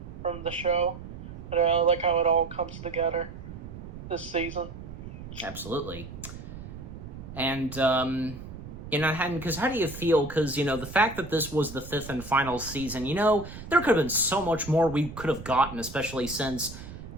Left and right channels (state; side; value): noise; right; rumble, 12 dB below the sound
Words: from the show. And I like how it all comes together this season. Absolutely. And, because how do you feel? Because, the fact that this was the fifth and final season, there could have been so much more we could have gotten, especially since